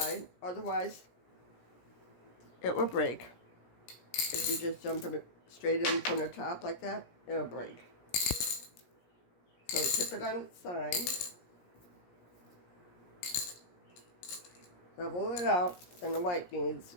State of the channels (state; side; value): late; right; 17 ms